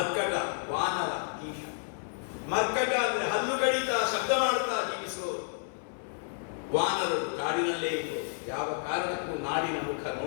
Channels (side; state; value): right; silent; 57 dB below the other